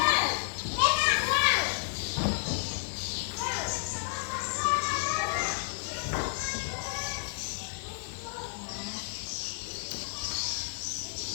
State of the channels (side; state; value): right; silent; 57 dB below the other